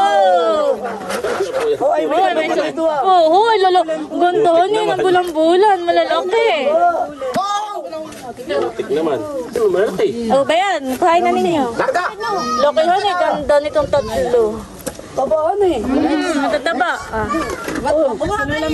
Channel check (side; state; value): both; identical; correlation 1.00